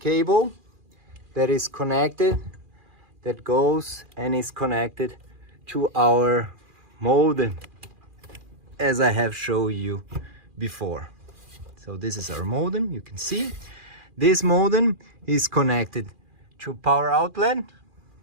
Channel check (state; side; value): late; left; 2.4 ms